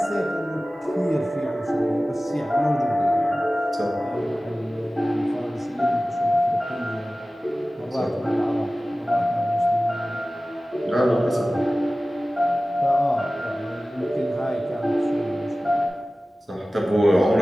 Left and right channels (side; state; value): both; normal; correlation 0.96